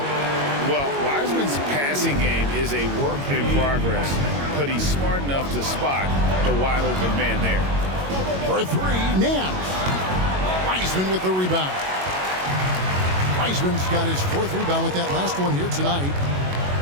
Well, Wiseman's passing game is a work in progress, but he's smart enough to spot the wide open man there. For 3, Nance. Wiseman with the rebound. Wiseman's got his 4th rebound with that last one here tonight.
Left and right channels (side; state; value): left; late; 22 ms